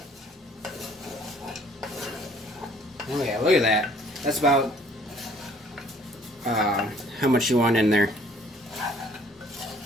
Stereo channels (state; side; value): normal; both; correlation 0.58